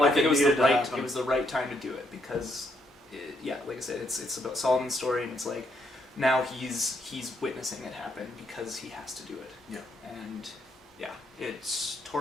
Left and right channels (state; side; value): normal; both; correlation 0.75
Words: it was the right time to do it because, like I said, it's about Solomon's story, and it's like now he's witnessing it happen because he has to do it. Yeah. And yeah, it's